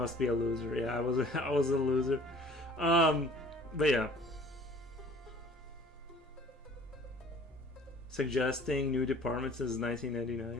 be a loser. Yeah, I was I was a loser. But yeah. Suggesting new departments since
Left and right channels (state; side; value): normal; both; correlation 0.51